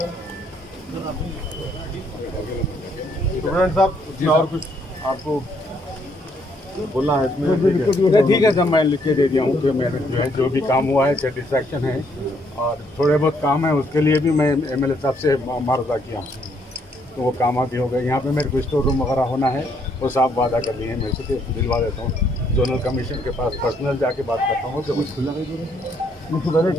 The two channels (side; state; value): both; normal; correlation 0.70